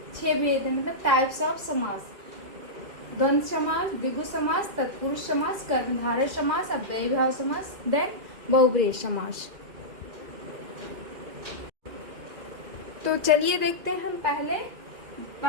6 भेद हैं, मतलब टाइप्स ऑफ समास। द्वंद्व समास, द्विगु समास, तत्पुरुष समास, कर्मधारय समास, अव्ययीभाव समास, देन बहुब्रीहि समास। तो चलिए देखते हैं हम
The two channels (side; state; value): left; late; 2.0 ms